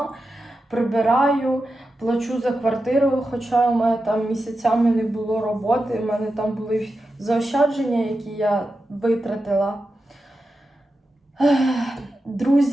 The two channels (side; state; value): both; normal; correlation 0.90